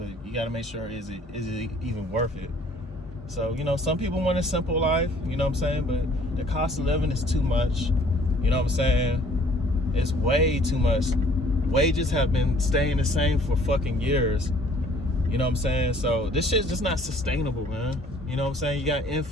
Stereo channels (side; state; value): both; normal; correlation 0.57